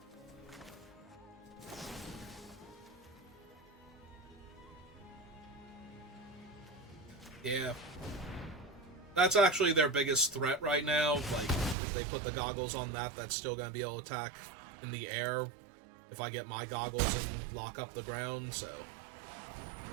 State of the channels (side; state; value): left; drops out; at 11.8 s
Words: Yeah. That's actually their biggest threat right now. Like, if they put the goggles on that, that's still going to be able to attack in the air if I get my goggles and lock up the ground, so...